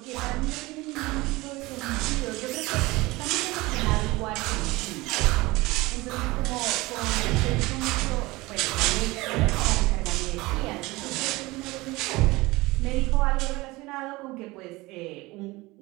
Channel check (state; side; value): quieter; left; 21.5 dB